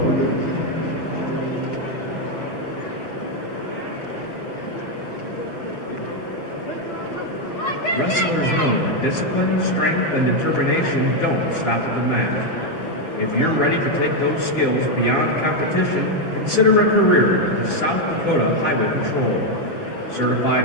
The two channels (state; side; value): late; right; 6.0 ms